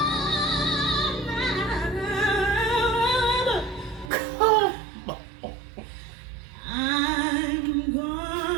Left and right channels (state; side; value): drops out; left; at 4.1 s